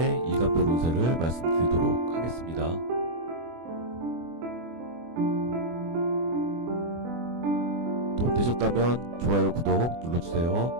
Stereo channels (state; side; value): late; left; 24 ms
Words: 일간별 운세를 말씀드리도록 하겠습니다. 도움 되셨다면 좋아요, 구독